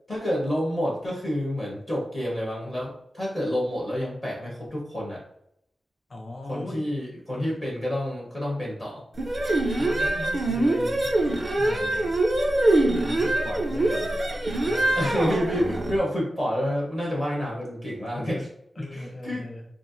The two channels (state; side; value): normal; both; correlation 0.92